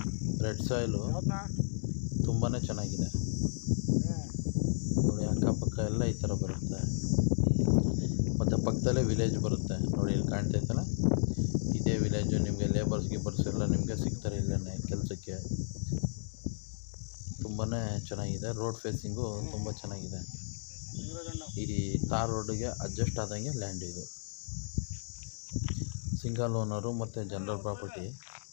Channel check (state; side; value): silent; right; digital silence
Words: ರೆಡ್ ಸಾಯಿಲು ತುಂಬಾ ಚೆನ್ನಾಗಿದೆ ನೋಡಿ. ಅಕ್ಕಪಕ್ಕ ಎಲ್ಲ ಈ ಥರ ಬರುತ್ತೆ. ಮತ್ತು ಪಕ್ಕದಲ್ಲೇ ವಿಲೇಜ್ ಬರುತ್ತೆ ನೋಡಿ, ಇಲ್ಲಿ ಕಾಣ್ತೈತಲ್ಲ, ಇದೇ ವಿಲೇಜು. ನಿಮಗೆ ಲೇಬರ್ಸ್ ಗಿಬರ್ಸ್ ಎಲ್ಲ ನಿಮಗೆ ಸಿಗ್ತಾರೆ ಇಲ್ಲೇ ಕೆಲಸಕ್ಕೆ. ತುಂಬಾ ಚೆನ್ನಾಗಿದೆ. ರೋಡ್ ಫೇಸಿಂಗು ತುಂಬ ಚೆನ್ನಾಗಿದೆ. ಈ ತಾರ್ ರೋಡಿಗೆ ಅಡ್ಜಸ್ಟ್ ಆದಂಗೆ ಲ್ಯಾಂಡ್ ಇದು. ಸಿಂಗಲ್ ಓನರು ಮತ್ತು ಜನರಲ್ ಪ್ರಾಪರ್ಟಿ.